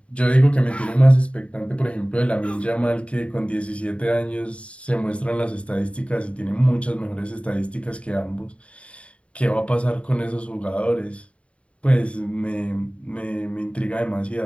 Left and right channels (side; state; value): right; late; 0.062 ms